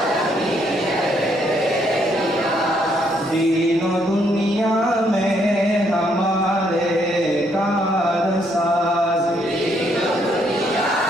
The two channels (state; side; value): normal; both; correlation 0.71